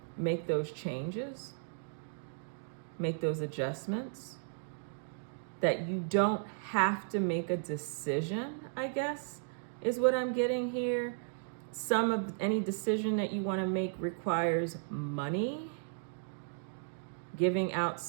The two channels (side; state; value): left; silent; digital silence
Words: make those changes, make those adjustments, that you don't have to make a decision, I guess, is what I'm getting here. Any decision that you want to make requires money, giving out